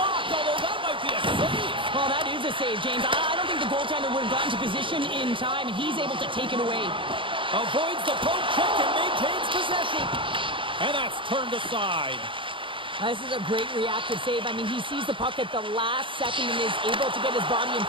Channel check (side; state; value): left; late; 0.25 ms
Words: although that might be a save. Well, that is a save, James. I don't think the goaltender would have gotten to position in time, and he's able to take it away. Avoids the poke check and maintains possession. And that's turned aside. This is a great reactive save. I mean, he sees the puck at the last second and is able to get his body in